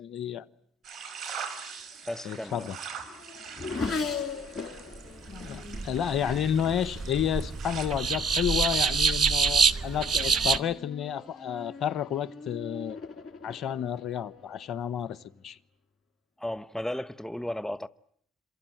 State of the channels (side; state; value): both; normal; correlation 0.56